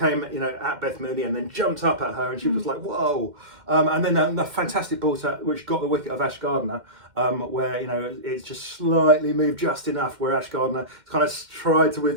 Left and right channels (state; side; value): late; left; 2.1 ms